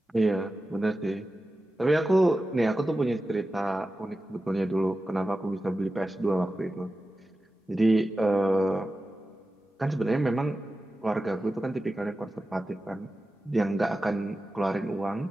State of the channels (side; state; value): both; normal; correlation 0.93